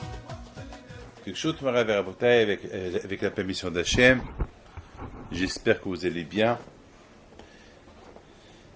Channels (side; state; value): both; identical; correlation 1.00